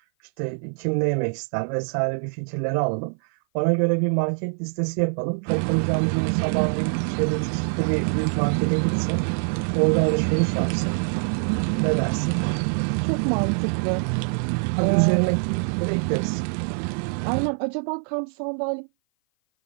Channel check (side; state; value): left; silent; 55 dB below the other